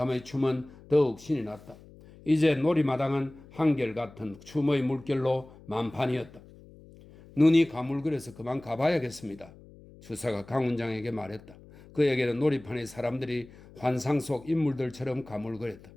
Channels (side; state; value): left; noise; hum, 22 dB below the sound